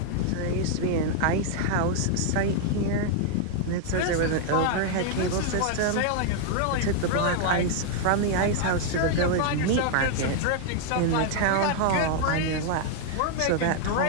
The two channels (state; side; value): different; both; correlation 0.00